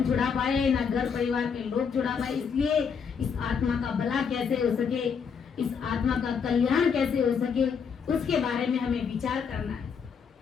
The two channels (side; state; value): right; quieter; 6.4 dB